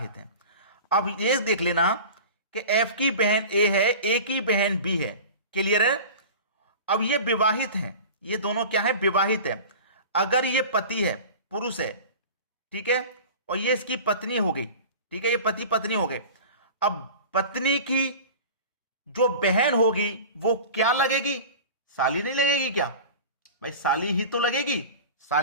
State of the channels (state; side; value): inverted; both; correlation -0.35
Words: हैं। अब ये देख लेना कि एफ की बहन ए है, ए की बहन बी है। क्लियर है? अब ये विवाहित हैं, ये दोनों क्या है? विवाहित है। अगर ये पति है, पुरुष है, ठीक है, और ये इसकी पत्नी हो गई, ठीक है, ये पति पत्नी हो गए। अब पत्नी की जो बहन होगी वो क्या लगेगी? साली नहीं लगेगी क्या भाई? साली ही तो लगेगी,